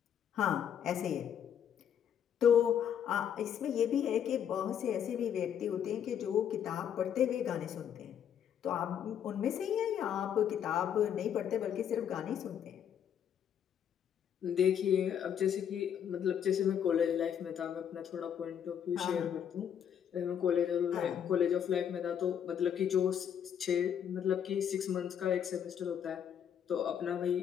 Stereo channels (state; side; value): quieter; right; 8.9 dB